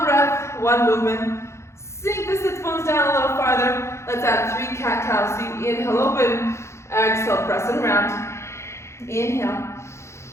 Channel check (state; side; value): late; right; 0.13 ms